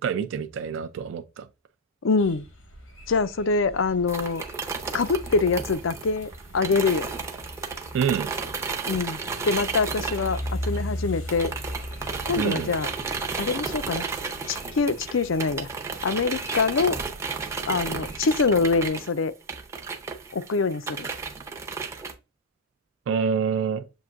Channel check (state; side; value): normal; both; correlation -0.05